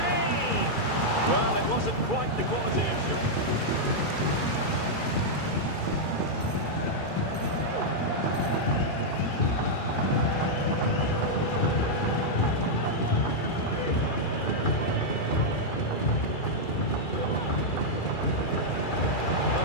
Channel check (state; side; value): late; right; 2.3 ms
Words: Well, it wasn't quite the quality of shot.